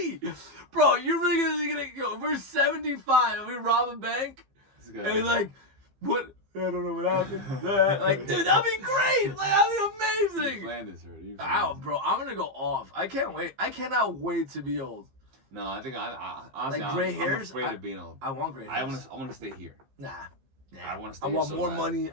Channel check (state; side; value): late; left; 15 ms